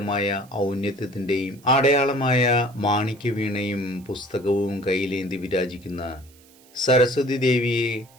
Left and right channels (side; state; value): right; noise; hiss, 27 dB below the sound